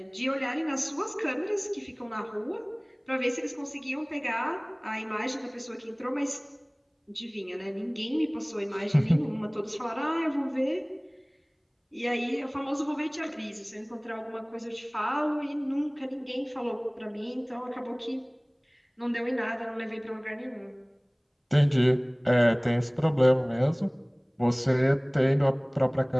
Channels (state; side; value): identical; both; correlation 1.00